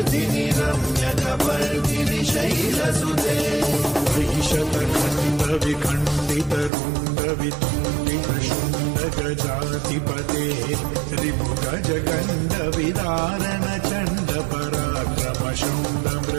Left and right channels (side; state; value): left; drops out; at 6.7 s